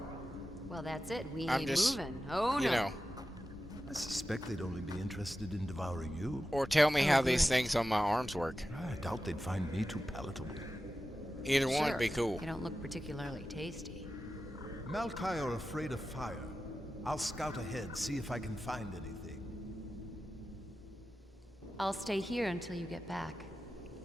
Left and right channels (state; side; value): normal; both; correlation 0.93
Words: Well, that's it. We I'm ain't just, moving. Oh, no. you know, I suspect they'd only be interested in devouring you. or tell me Oh, how these good. things on my arms work. I doubt they'd find me too palatable. Either one Sure. would be cool. You don't look particularly tasty. Malkai are afraid of fire. I'll scout ahead, see if I can find anything. I'll stay here until you get back.